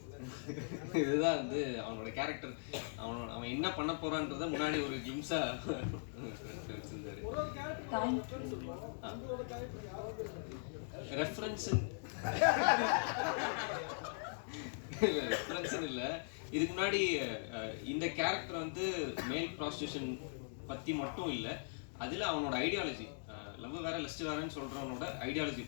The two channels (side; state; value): right; silent; digital silence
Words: இதுதான் வந்து அவனோட கேரக்டர், அவன் என்ன பண்ண போறான்றத முன்னாடி ஒரு கிம்ஸா வச்சிருந்தாரு. ரெஃபரன்ஸ் இல்லை. இதுக்கு முன்னாடி இந்த கேரக்டர் வந்து மேல் ப்ராஸ்டியூஷன் பற்றி மட்டும் இல்லை, அதில் அவனோட ஐடியாலஜி, லவ் வேற லஸ்ட் வேறன்னு சொல்கிறவனோட ஐடியாலஜி